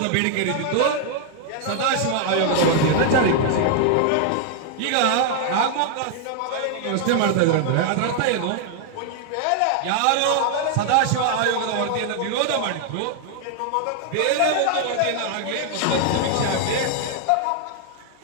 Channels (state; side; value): different; both; correlation 0.00